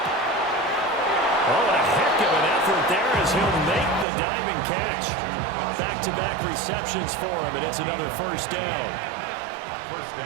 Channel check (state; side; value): drops out; left; at 4.0 s